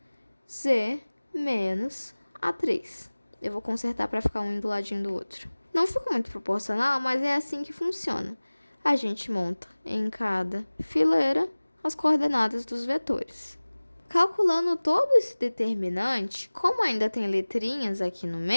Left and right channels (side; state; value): both; inverted; correlation -1.00